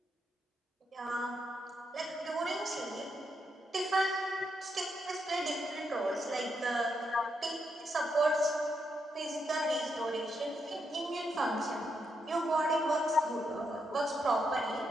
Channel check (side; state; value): both; normal; correlation 0.81